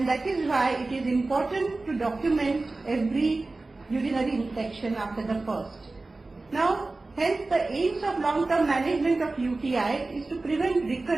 that is why it is important to document every urinary infection after the first. Now, hence the aims of long-term management of UTI is to prevent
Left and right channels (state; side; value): quieter; left; 3.3 dB